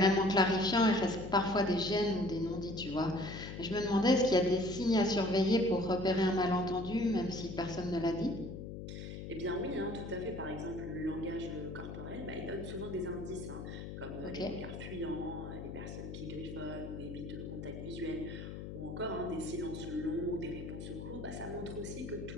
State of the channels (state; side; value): noise; left; hum, 8 dB below the sound